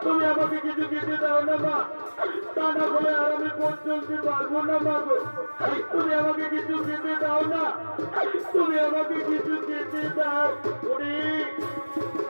তুমি আমাকে কিছু খেতে দাও না মা, তা না বলে আর আমি পথ চলতে পারবো না মা গো। তুমি আমাকে কিছু খেতে দাও না, তুমি আমাকে কিছু খেতে দাও।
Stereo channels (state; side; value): inverted; both; correlation -1.00